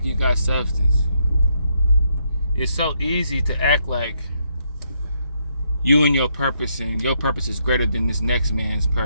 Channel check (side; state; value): both; inverted; correlation -0.76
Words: you got substance. It's so easy to act like you and your purpose is greater than this next man's